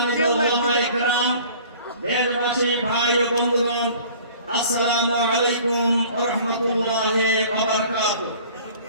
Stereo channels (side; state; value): both; inverted; correlation -0.49